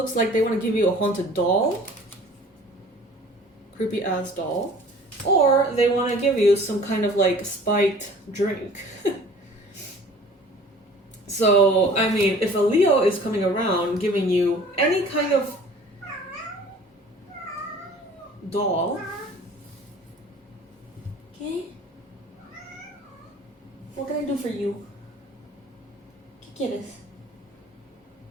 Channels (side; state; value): both; normal; correlation 0.48